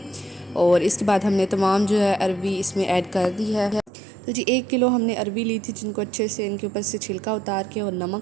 और इसके बाद हमने तमाम जो है अरबी इसमें ऐड कर दी है। तो जी 1 किलो हमने अरबी ली थी, जिनको अच्छे से इनके ऊपर से छिलका उतार के और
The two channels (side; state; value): left; drops out; at 3.9 s